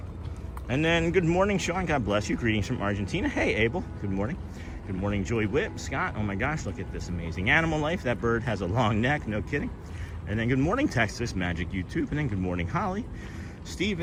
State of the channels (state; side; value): identical; both; correlation 1.00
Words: And then, good morning, Sean. God bless you. Greetings from Argentina. Hey, Abel. Good morning. Good morning, Joy Whip. Scott. Oh my gosh, look at this amazing animal life. That bird has a long neck. No kidding. And then, good morning, Texas Magic YouTube. And then, good morning, Holly.